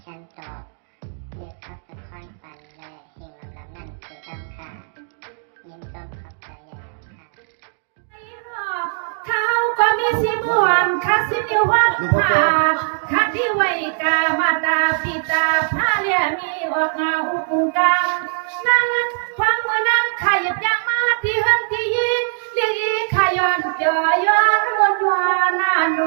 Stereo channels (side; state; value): left; silent; 65 dB below the other